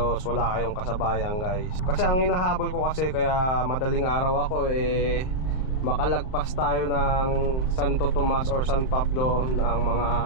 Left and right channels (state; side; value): late; right; 38 ms